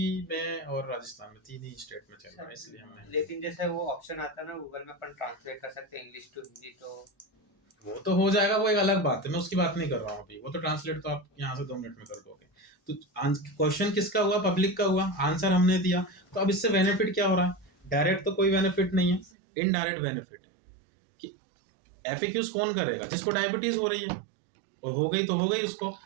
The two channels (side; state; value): left; drops out; at 19.3 s